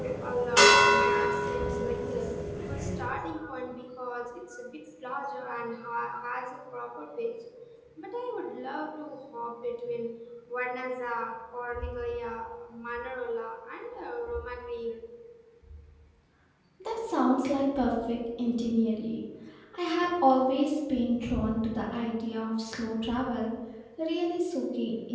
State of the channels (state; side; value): identical; both; correlation 1.00